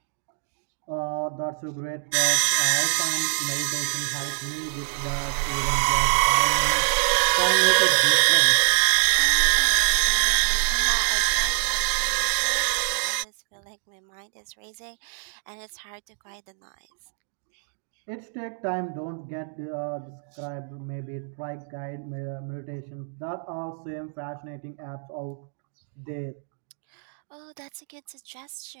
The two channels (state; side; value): silent; left; digital silence